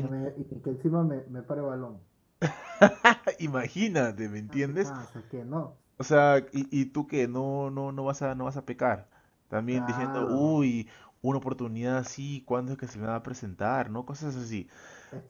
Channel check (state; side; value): identical; both; correlation 1.00